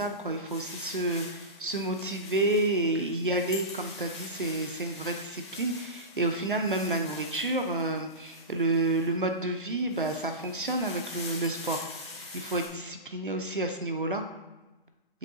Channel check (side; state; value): both; normal; correlation -0.18